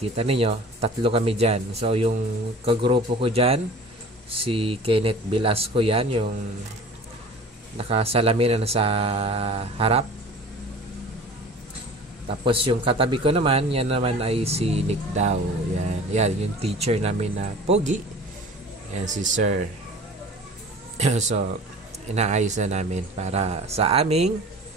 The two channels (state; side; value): normal; both; correlation 0.42